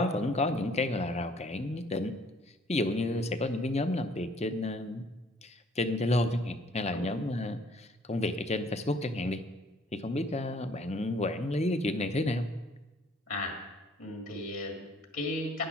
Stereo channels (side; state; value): both; normal; correlation 0.60